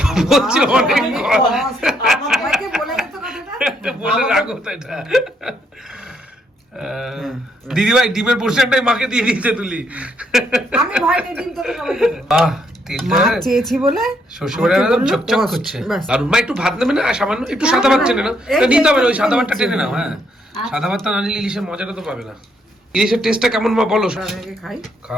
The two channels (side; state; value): both; normal; correlation 0.73